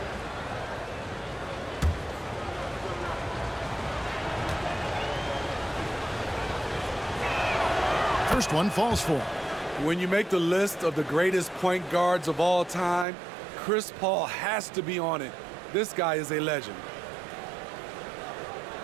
First one falls for him. When you make the list of the greatest point guards of all time, Chris Paul has to be on it. This guy is a legend.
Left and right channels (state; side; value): drops out; left; at 13.1 s